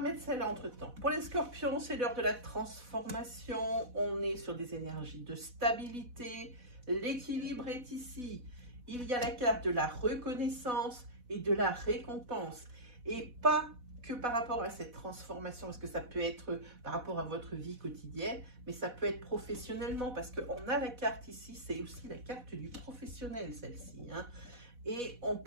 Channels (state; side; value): late; left; 4.1 ms